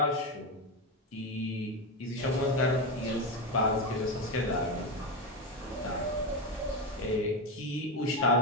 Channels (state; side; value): normal; both; correlation 0.14